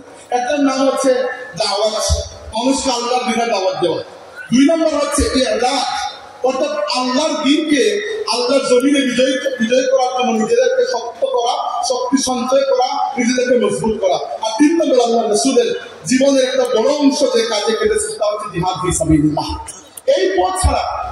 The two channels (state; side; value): identical; both; correlation 1.00